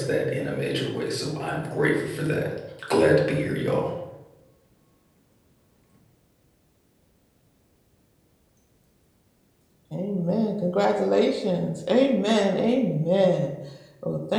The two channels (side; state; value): both; identical; correlation 1.00